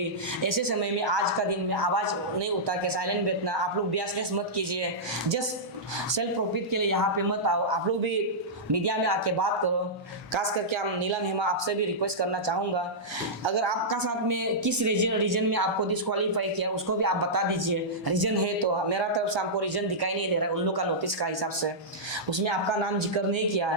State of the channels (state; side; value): normal; both; correlation -0.12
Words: ऐसे समय में आज का दिन में आवाज़ नहीं उठा के साइलेंट बैठना, आप लोग बियासनेस मत कीजिए। जस्ट सेल्फ प्रॉफिट के लिए यहाँ पे मत आओ, आप लोग भी मीडिया में आके बात करो। खास करके हम नीलम हेमा आपसे भी रिक्वेस्ट करना चाहूँगा, अगर आपका साथ में किस रीजन में आपको डिस्क्वालीफाई किया उसको भी आप बता दीजिए। रीजन है तो मेरा तरफ से हमको रीजन दिखाई नहीं दे रहा है उन लोग का नोटिस का हिसाब से, उसमें आपका नाम जिक्र नहीं किया,